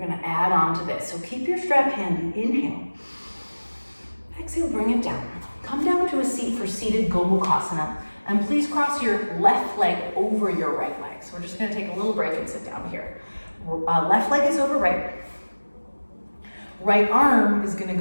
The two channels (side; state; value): both; inverted; correlation -1.00